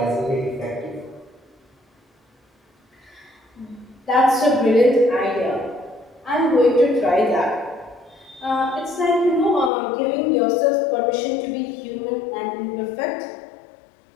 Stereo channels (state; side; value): drops out; right; at 9.7 s